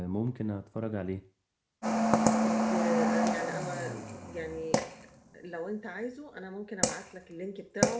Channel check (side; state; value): both; identical; correlation 1.00